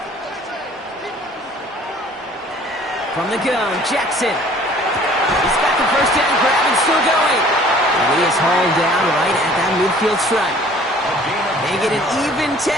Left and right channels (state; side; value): normal; both; correlation 0.52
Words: From the gun, Jackson. He's got the 1st down grab and still going. And he is hauled down right at that midfield stripe. They get an even